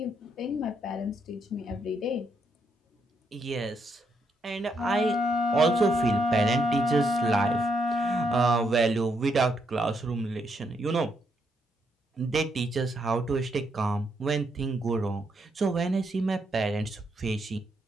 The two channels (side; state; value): both; normal; correlation 0.77